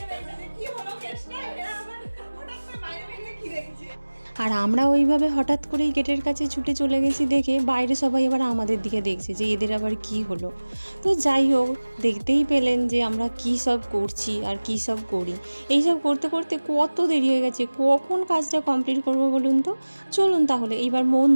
আর আমরা ওইভাবে হঠাৎ করেই গেটের কাছে ছুটে চলে গেছি দেখে বাইরে সবাই আবার আমাদের দিকে দেখছে যে এদের আবার কি হলো। তো যাই হোক, দেখতেই পেলেন যে আমরা কি সব করছি আর কি সব করি। এইসব করতে করতে কত দেরি হয়ে গেছে, কখন কাজটা কমপ্লিট করবো বলুন তো। চলুন তাহলে এইবার মন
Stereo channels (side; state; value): both; inverted; correlation -1.00